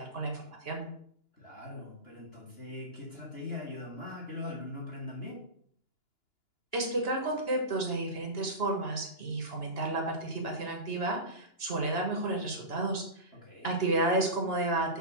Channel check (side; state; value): right; late; 2.9 ms